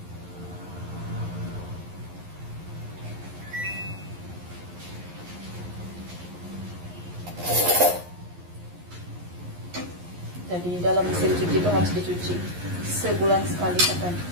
Jadi dalam mesin cuci itu harus dicuci sebulan sekali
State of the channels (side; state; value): left; late; 11 ms